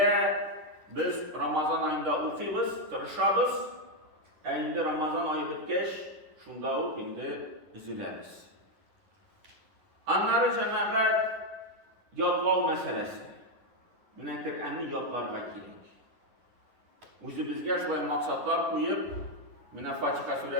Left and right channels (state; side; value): late; left; 10 ms